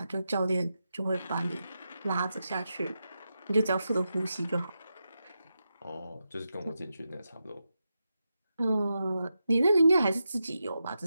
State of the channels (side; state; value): both; inverted; correlation -0.88